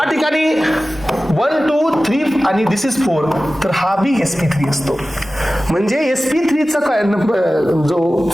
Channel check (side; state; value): both; normal; correlation 0.96